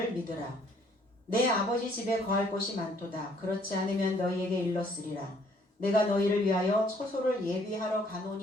믿으라. 내 아버지 집에 거할 곳이 많도다. 그렇지 않으면 너희에게 일렀으리라. 내가 너희를 위하여 처소를 예비하러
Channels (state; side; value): normal; both; correlation 0.62